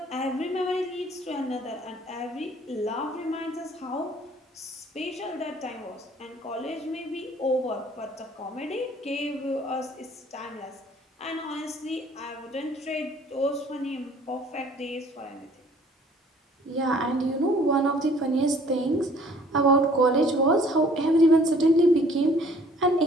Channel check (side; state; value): both; normal; correlation 0.56